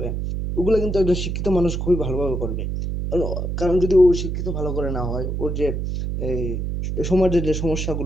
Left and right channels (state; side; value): noise; right; hum, 2 dB below the sound